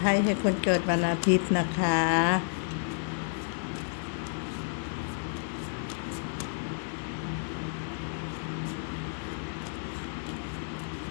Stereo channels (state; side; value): silent; right; digital silence